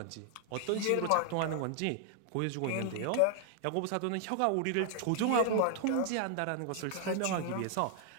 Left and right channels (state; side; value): different; both; correlation 0.00